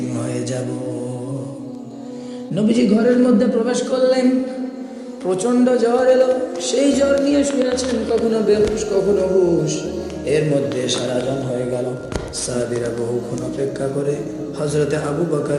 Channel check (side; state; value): both; identical; correlation 1.00